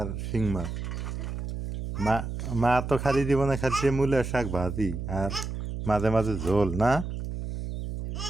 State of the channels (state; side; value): noise; right; hum, 5 dB below the sound